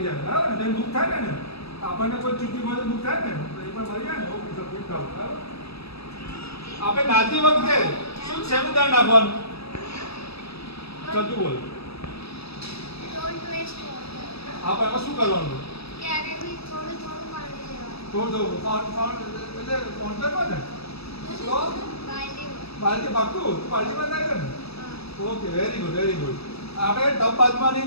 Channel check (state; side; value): late; right; 0.78 ms